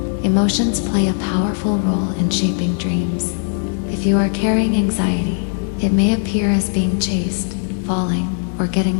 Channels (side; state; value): right; silent; 67 dB below the other